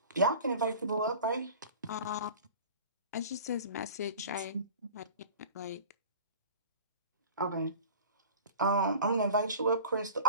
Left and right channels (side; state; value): both; inverted; correlation -0.41